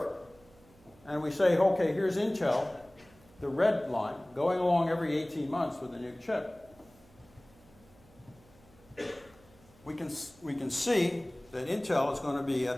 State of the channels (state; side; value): noise; right; hum, 27 dB below the sound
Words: and we say, okay, here's Intel, the red line, going along every 18 months with a new chip, we can see that Intel is going to be